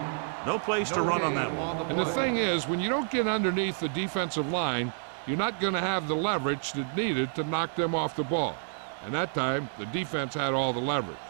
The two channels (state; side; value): silent; left; digital silence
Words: No place to run on that one. And the thing is, when you don't get underneath the defensive line, you're not going to have the leverage that's needed to knock them off the ball. And that time, the defense had all the leverage.